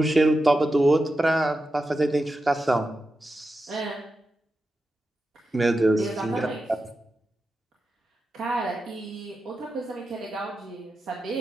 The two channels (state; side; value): normal; both; correlation 0.90